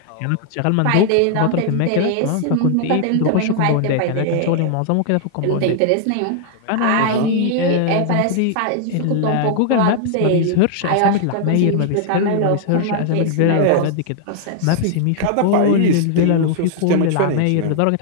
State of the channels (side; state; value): both; different; correlation 0.00